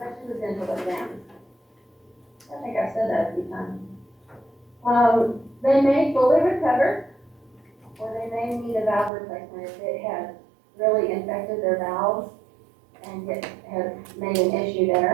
the dental exam. I think I've said that a few times. They may fully recover, or they may need a valve replacement if it has really infected their valves and has made an issue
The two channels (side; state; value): left; drops out; at 9.1 s